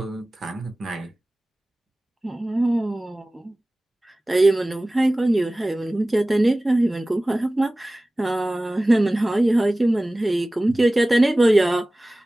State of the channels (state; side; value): normal; both; correlation 0.98